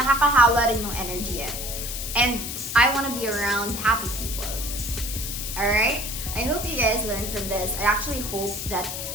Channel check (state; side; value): noise; left; hiss, 6 dB below the sound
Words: rin yung energy eh. And I want to be around happy people. Alright? I hope you guys learned from this. I actually hope that